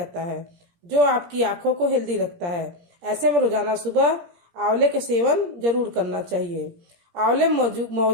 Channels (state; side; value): late; left; 17 ms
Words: है, जो आपकी आँखों को हेल्दी रखता है। ऐसे में रोजाना सुबह आंवले का सेवन जरूर करना चाहिए। आंवले में